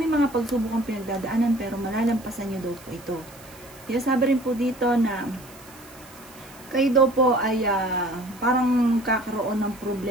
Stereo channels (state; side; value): noise; right; hiss, 22 dB below the sound